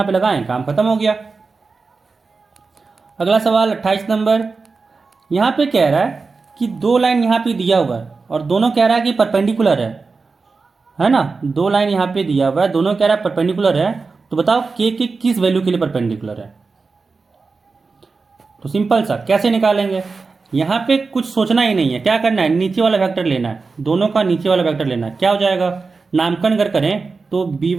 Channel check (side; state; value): left; quieter; 4.3 dB